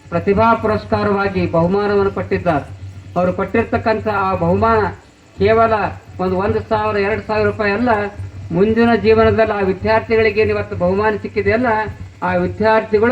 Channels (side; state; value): both; identical; correlation 1.00